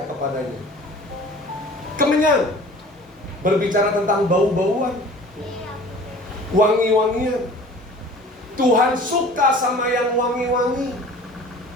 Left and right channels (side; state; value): both; normal; correlation 0.45